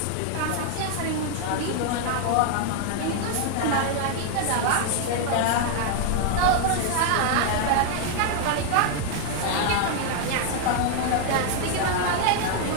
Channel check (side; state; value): both; different; correlation 0.00